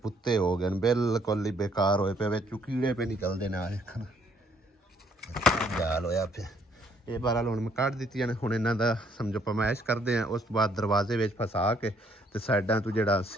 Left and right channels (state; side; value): normal; both; correlation 0.66